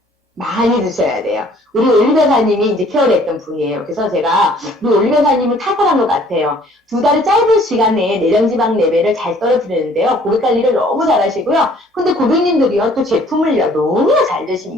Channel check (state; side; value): normal; both; correlation 0.57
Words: 많이 드셔야 돼요. 우리 올리변사님이 이제 케어를 했던 분이에요. 그래서 제가 우리 올리변사님은 탁월한 것 같아요. 두 달의 짧은 시간에 내장지방 레벨을 잘 떨어뜨리는데요. 고객 관리를 너무 잘하시고요. 근데 고객님들이요 또 제품을요 너무 잘